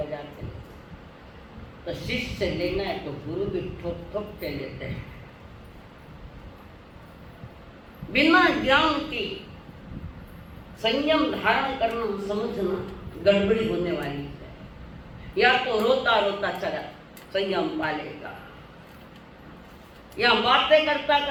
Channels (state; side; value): identical; both; correlation 1.00